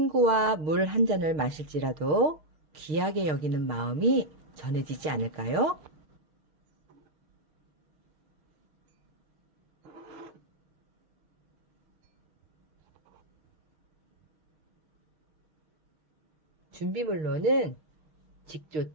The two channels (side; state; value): left; late; 6.5 ms